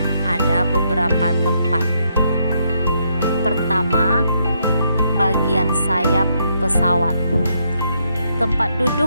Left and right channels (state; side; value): inverted; both; correlation -0.76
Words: ada beberapa tempat. Pertama, bagian sayap pesawat. Tempat